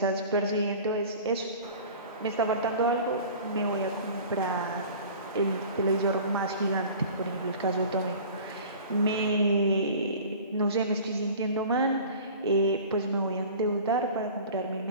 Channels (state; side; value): inverted; both; correlation -0.42